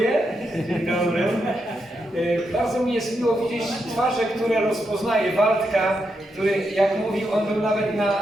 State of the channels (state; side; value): normal; both; correlation 0.83